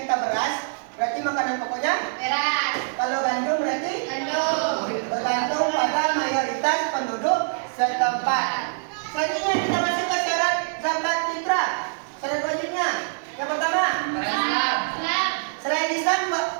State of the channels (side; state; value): left; silent; 58 dB below the other